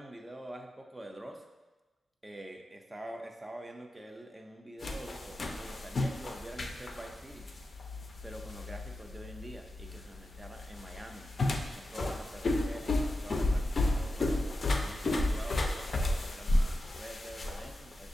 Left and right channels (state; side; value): normal; both; correlation 0.90